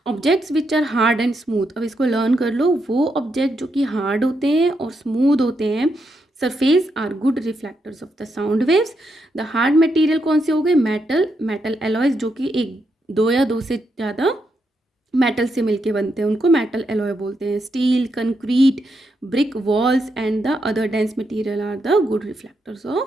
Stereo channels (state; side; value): normal; both; correlation 0.81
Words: Objects which are hard and smooth. अब इसको लर्न कर लो. वो ऑब्जेक्ट जो कि हार्ड होते हैं और स्मूथ होते हैं surface are good reflectors of the sound waves. The hard material कौन से हो गए, मेटल एलॉयज, जो कि एक दो या दो से ज़्यादा मेटल से मिलके बनते हैं, उनको मेटल एलॉय बोलते हैं. Steel, concrete, brick walls and the other dense material are the good reflectors